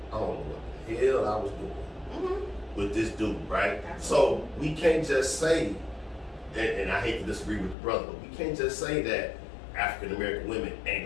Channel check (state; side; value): drops out; right; at 7.8 s